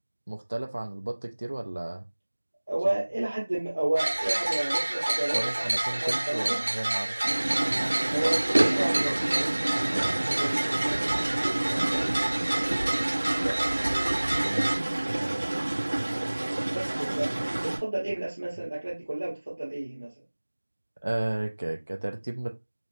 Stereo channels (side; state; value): both; inverted; correlation -1.00